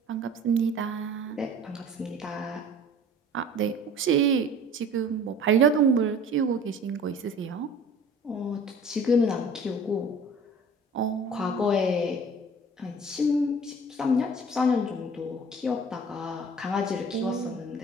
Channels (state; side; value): normal; both; correlation 0.46